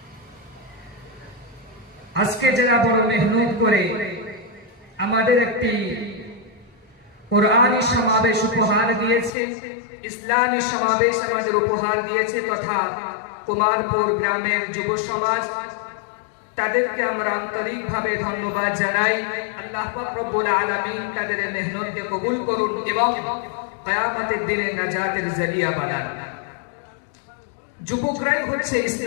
আজকে যারা বড় মেহনত করে আমাদের একটি কোরআনী সমাবেশ উপহার দিয়েছে ইসলামী সমাবেশ আমাদের উপহার দিয়েছে তথা কুমারপুর গ্রামের যুব সমাজ তাদেরকে আমরা আন্তরিকভাবে ধন্যবাদ জানাই আল্লাহ পাক রব্বুল আলামিন তাদের মেহনতকে কবুল করুন এবং কিয়ামতের দিনে নাজাতের জরিয়া বানান যুবকরাই হচ্ছে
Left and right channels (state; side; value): drops out; right; at 9.3 s